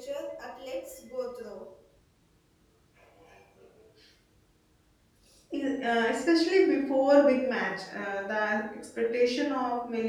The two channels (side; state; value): both; identical; correlation 1.00